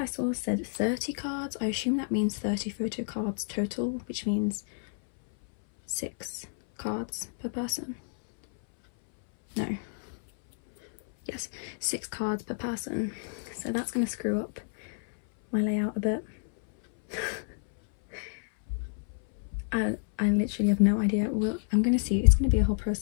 saw said 30 cards. I assume that means 30 photo cards total, which means 6 cards per person. No. Yes, 6 cards per person. So that's going to screw up my layout a bit. I literally have no idea. Well, I'm going to see. It's going to be a whole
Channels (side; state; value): right; silent; 58 dB below the other